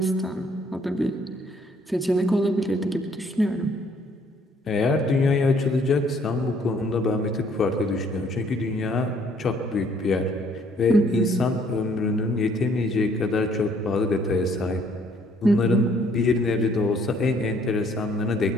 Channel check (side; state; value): both; normal; correlation 0.63